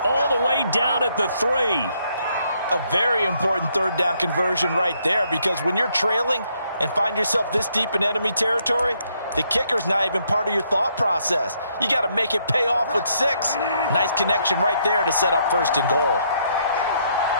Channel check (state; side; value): inverted; both; correlation -0.72